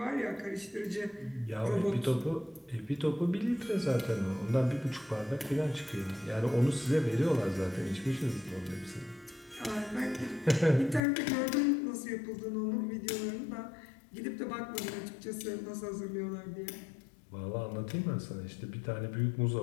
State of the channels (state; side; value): drops out; right; at 11.0 s